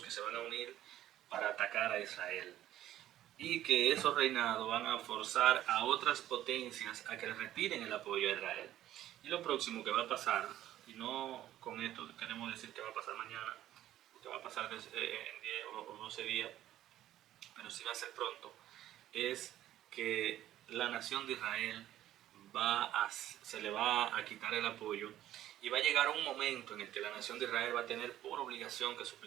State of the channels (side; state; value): left; quieter; 13.0 dB